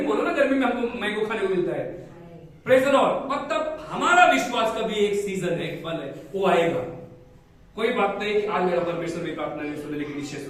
बोलो ना, गर्मी में हमको मैंगो खाने को मिलता है। Praise the Lord. मतलब हमारा विश्वास का भी एक सीजन है, एक फल है, वो आएगा। कोई बात नहीं कि आज मेरा परमेश्वर मेरी प्रार्थना नहीं सुने, लेकिन निश्चय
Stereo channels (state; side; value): identical; both; correlation 1.00